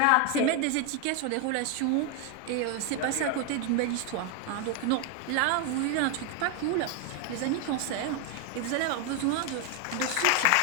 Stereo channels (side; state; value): both; different; correlation 0.01